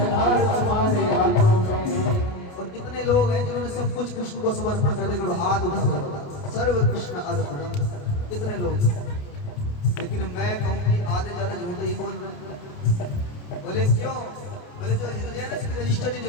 हार तुम्हारे हाथों में। और कितने लोग हैं जिन्होंने सब कुछ कृष्ण को समर्पण कर दिया, हाथ उठा सर्व कृष्ण अर्पणम, कितने लोग। लेकिन मैं कहूँ कि आधे ज्यादा झूठे ही बोल रहे हैं। बोले क्यों? बोले जो हृदय है ना इसकी रजिस्टर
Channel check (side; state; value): right; late; 28 ms